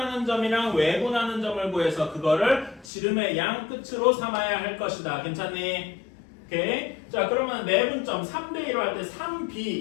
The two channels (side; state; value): right; drops out; at 2.9 s